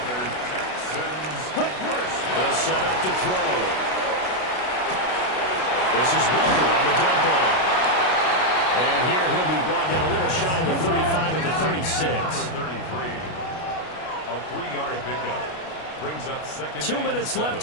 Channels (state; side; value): late; right; 32 ms